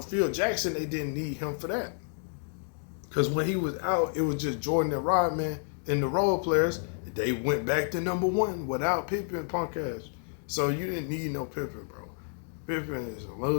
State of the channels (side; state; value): right; silent; 58 dB below the other